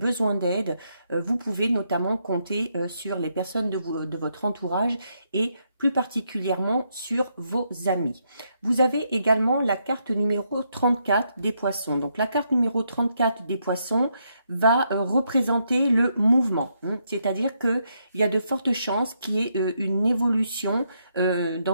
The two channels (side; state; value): both; inverted; correlation -0.78